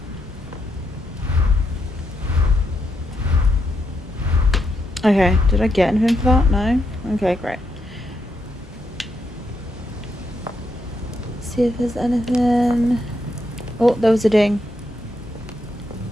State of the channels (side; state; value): both; normal; correlation 0.80